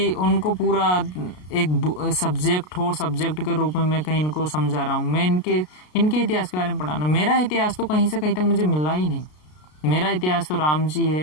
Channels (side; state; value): right; late; 33 ms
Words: उनको पूरा एक सब्जेक्ट हो, सब्जेक्ट के रूप में मैं कहीं इनको समझा रहा हूँ। मैं इनके इतिहास के बारे में पढ़ाना, मेरा इतिहास तो कहीं से कहीं तक मुझे मिला ही नहीं। मेरा इतिहास तो राम जी